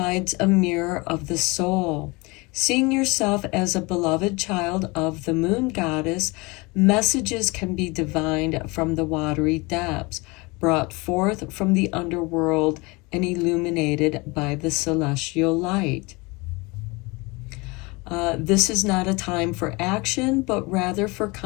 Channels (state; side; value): quieter; right; 25.8 dB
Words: a mirror of the soul. Seeing yourself as a beloved child of the moon goddess, messages can be divined from the watery depths, brought forth from the underworld and illuminated by the celestial light. This is not a time for action, but rather for